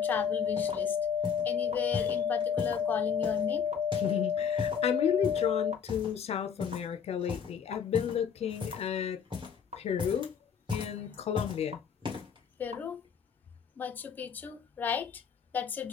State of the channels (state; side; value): quieter; right; 6.9 dB